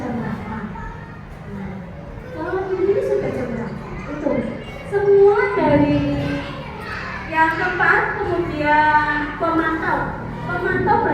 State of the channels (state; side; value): identical; both; correlation 1.00